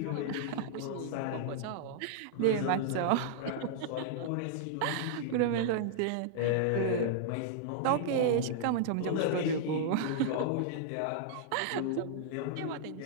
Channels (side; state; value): both; different; correlation -0.01